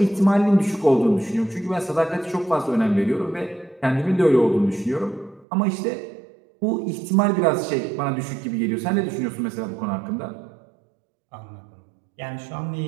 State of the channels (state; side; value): drops out; left; at 5.5 s